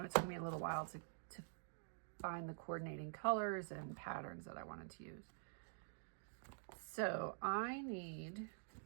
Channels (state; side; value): silent; left; digital silence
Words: it took me a little while to find the coordinating colors and patterns that I wanted to use. So I need